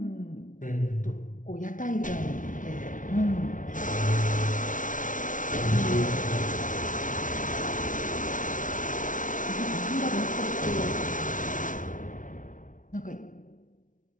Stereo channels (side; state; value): right; late; 0.38 ms